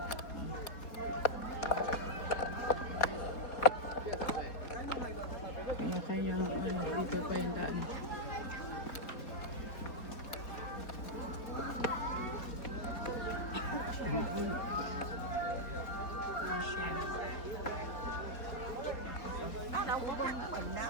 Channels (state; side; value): late; right; 4.2 ms